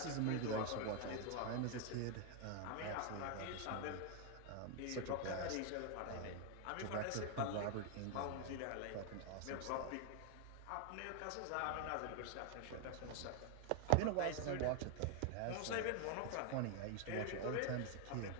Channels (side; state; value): both; different; correlation 0.00